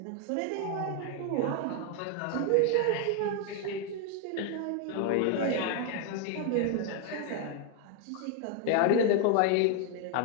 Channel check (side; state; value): both; different; correlation 0.00